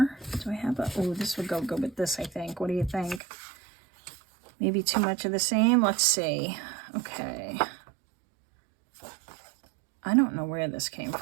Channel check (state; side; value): drops out; left; at 3.2 s